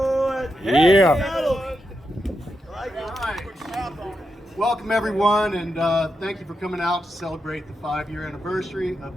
Yeah. Welcome everyone, and thank you for coming out to celebrate the 5-year anniversary of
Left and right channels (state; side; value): normal; both; correlation 0.86